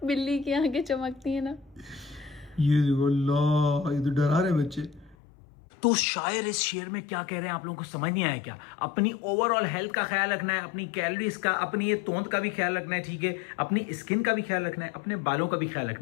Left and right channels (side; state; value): right; drops out; at 5.2 s